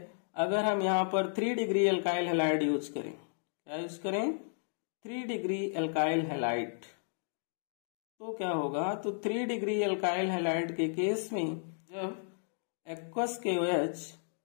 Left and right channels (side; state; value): right; silent; digital silence